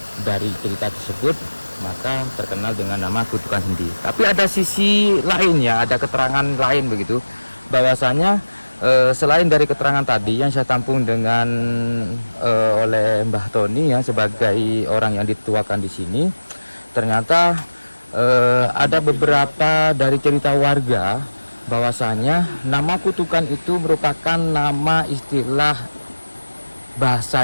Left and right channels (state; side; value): inverted; both; correlation -1.00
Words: dari cerita tersebut maka terkenal dengan nama Kutukan Sendi. Tapi ada sisi lain, ya, ada keterangan lain begitu, bahwasanya selain dari keterangan tadi yang saya tampung dengan oleh Mbah Tony, ya, sebagai orang yang dituakan di sini, ternyata ada beberapa dari cerita warga bahwasanya nama Kutukan itu merupakan nama istilah bahasa